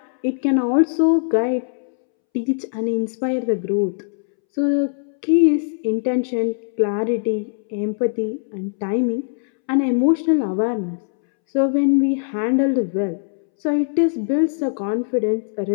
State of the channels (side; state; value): right; silent; 65 dB below the other